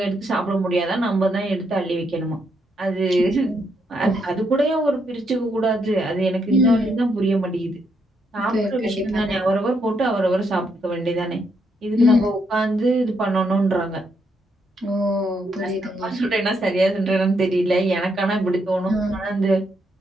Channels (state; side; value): normal; both; correlation 0.77